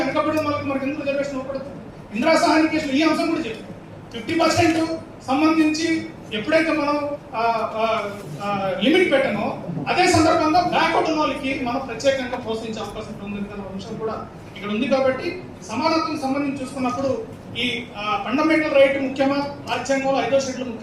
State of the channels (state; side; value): identical; both; correlation 1.00